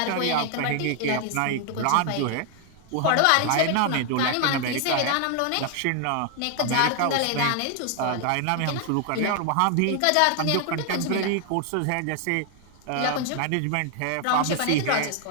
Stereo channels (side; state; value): both; different; correlation 0.00